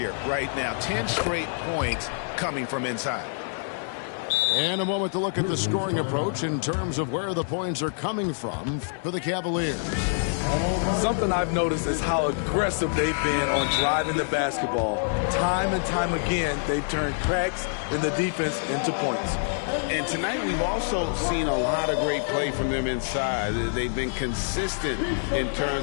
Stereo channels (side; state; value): right; silent; digital silence